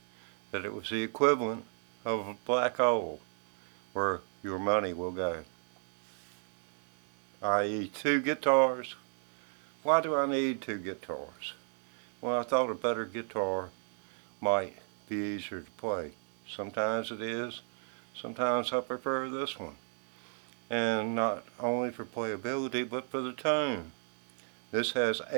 that it was the equivalent of a black hole where your money will go, i.e. two guitars. Why do I need two guitars? Well, I thought a better guitar might be easier to play. Sometimes it is. Sometimes I prefer this one. And not only for playability, but for the tone. This has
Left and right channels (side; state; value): left; silent; 55 dB below the other